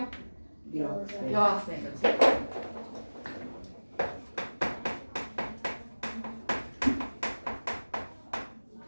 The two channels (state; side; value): inverted; both; correlation -1.00